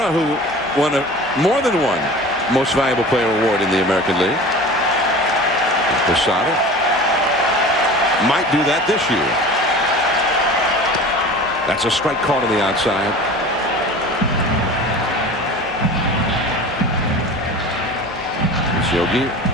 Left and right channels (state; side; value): normal; both; correlation 0.38